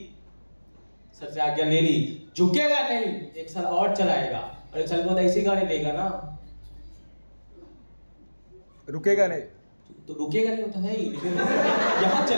सर से आज्ञा ले ली। झुकेगा नहीं, एक साल और चलाएगा, और एक साल बाद ऐसी गाड़ी लेगा ना, रुकेगा नहीं, तो रुकेगा नहीं होता है ही, लेकिन यहाँ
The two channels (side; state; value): both; inverted; correlation -1.00